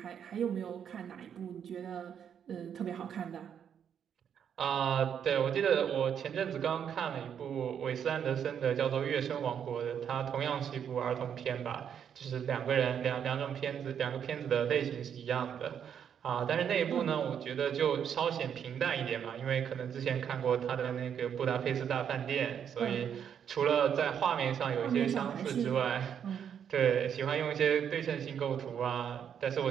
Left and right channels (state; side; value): quieter; left; 8.3 dB